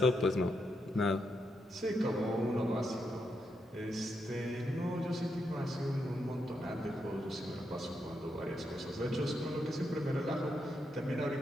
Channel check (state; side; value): normal; both; correlation 0.82